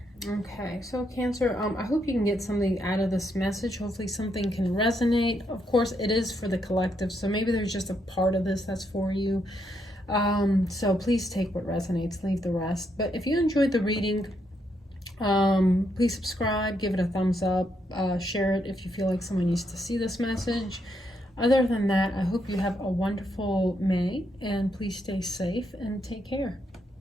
Okay, so Cancer, I hope you can get something out of this message. Hopefully something can resonate. Of course, it is for the collective, so maybe there's just a part of this that's for you. So please take what resonates, leave the rest. But if you enjoyed the reading, please subscribe, give it a thumbs up, share it if you feel like someone needs to see this message. Other than that, I hope you have a wonderful May, and please stay safe and take care.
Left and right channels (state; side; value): normal; both; correlation 0.78